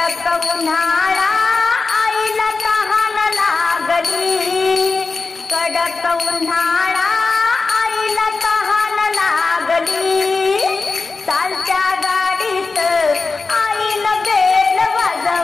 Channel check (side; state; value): right; quieter; 4.0 dB